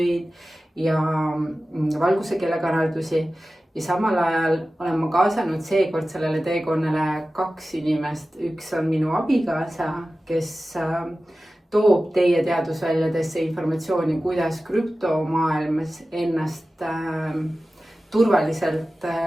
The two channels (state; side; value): normal; both; correlation 0.95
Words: ja valguse keelekanaldusi. Ja samal ajal olen ma kaasanud seekord sellele teekonnale 2 inimest. Üks on minu abikaasa, kes toob teie teadusväljadesse informatsiooni, kuidas krüptomaailmas ennast turvaliselt